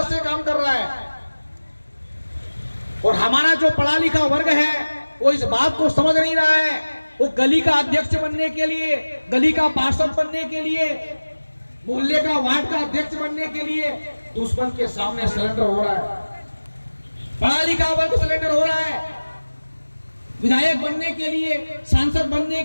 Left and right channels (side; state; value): both; inverted; correlation -1.00